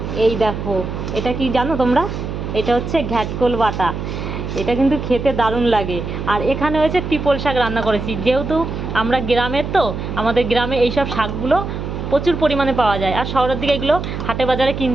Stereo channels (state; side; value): noise; right; hum, 5 dB below the sound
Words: এই দেখো, এটা কি জানো তোমরা? এটা হচ্ছে ঘ্যাটকোল বাটা। এটা কিন্তু খেতে দারুণ লাগে। আর এখানে হয়েছে ট্রিপল শাক রান্না করেছি। যেহেতু আমরা গ্রামের, তো আমাদের গ্রামে এইসব শাকগুলো প্রচুর পরিমাণে পাওয়া যায়, আর শহরের দিকে এগুলো হাটে বাজারে